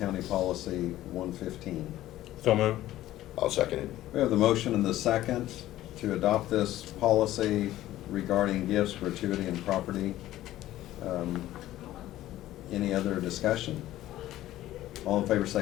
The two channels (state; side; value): quieter; right; 14.5 dB